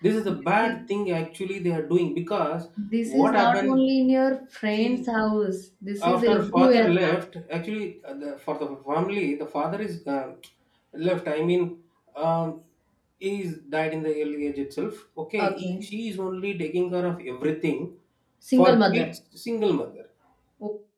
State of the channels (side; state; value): both; identical; correlation 1.00